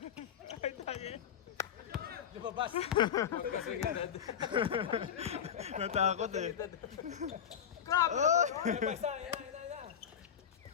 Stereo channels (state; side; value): quieter; right; 8.5 dB